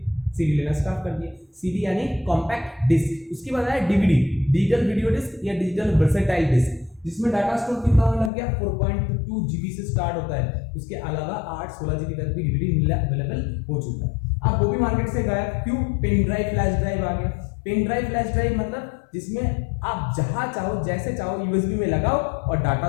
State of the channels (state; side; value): drops out; right; at 8.3 s